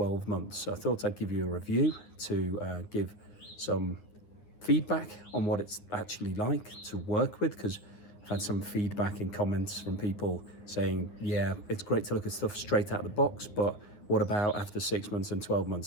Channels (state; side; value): late; right; 9.8 ms